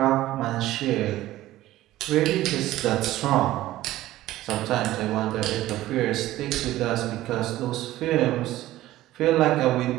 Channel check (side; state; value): left; quieter; 15.5 dB